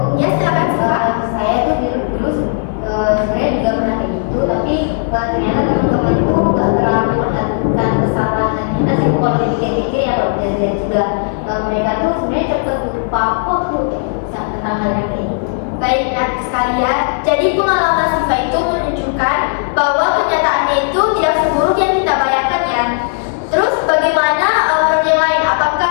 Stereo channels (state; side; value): silent; right; digital silence